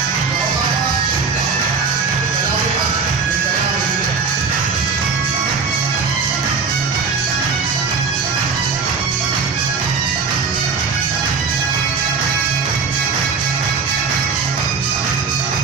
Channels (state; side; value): quieter; left; 5.2 dB